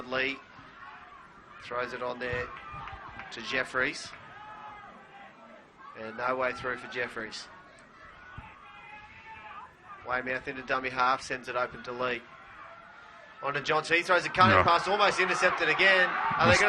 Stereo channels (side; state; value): both; identical; correlation 1.00